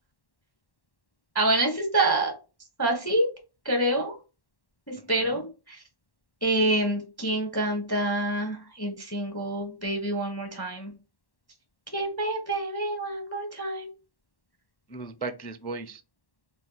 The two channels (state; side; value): late; right; 1.1 ms